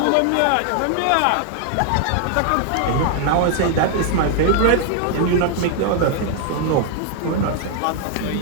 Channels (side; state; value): both; different; correlation 0.00